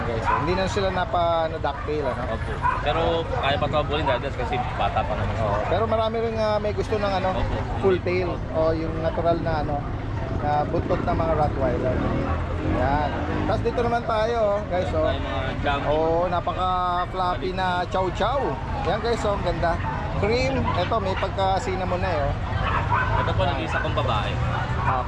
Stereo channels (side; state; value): both; identical; correlation 1.00